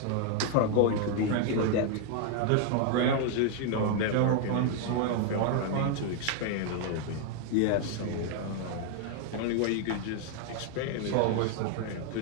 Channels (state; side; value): different; both; correlation 0.00